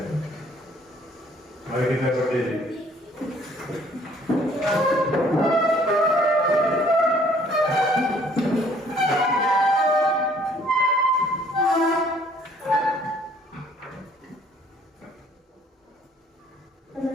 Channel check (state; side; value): normal; both; correlation 0.59